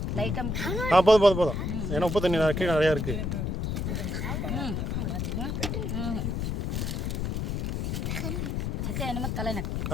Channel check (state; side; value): noise; left; rumble, 1 dB below the sound